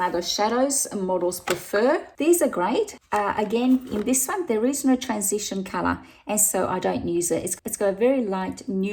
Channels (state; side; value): identical; both; correlation 1.00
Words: shadows models prefer. These are great. Again, in this one, there is no transition color, and so I don't use it. It's got a very light,